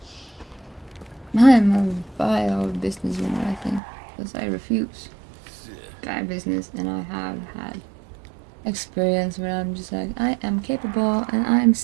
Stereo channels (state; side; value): drops out; left; at 3.8 s